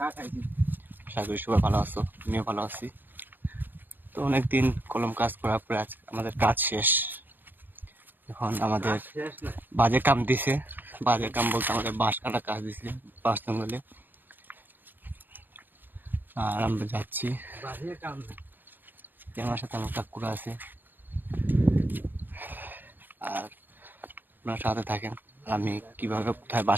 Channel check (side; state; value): left; late; 0.091 ms